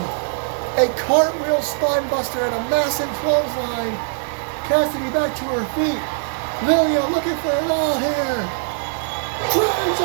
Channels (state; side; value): silent; left; digital silence